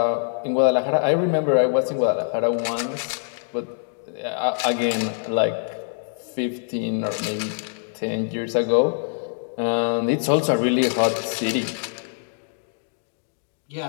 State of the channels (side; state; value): right; silent; 63 dB below the other